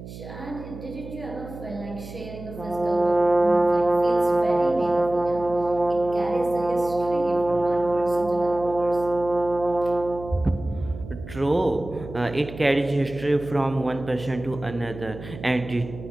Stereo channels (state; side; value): noise; right; hum, 14 dB below the sound